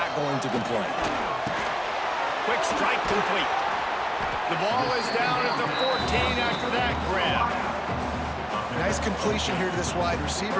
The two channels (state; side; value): identical; both; correlation 1.00